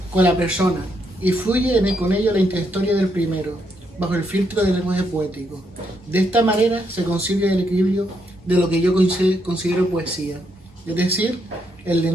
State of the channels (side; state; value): both; normal; correlation 0.77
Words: con la persona, y fluye con ello la intrahistoria del primero, bajo el filtro del lenguaje poético. De esta manera se consigue el equilibrio de lo que yo considero poesía, es decir, el